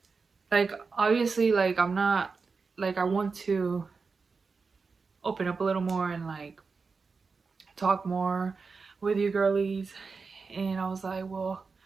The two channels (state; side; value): quieter; left; 4.7 dB